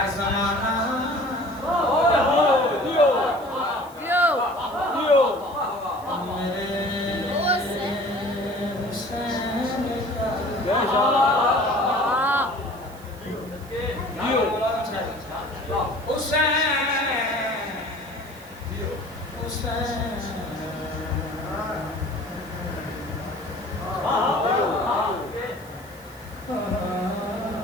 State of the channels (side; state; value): right; noise; hiss, 23 dB below the sound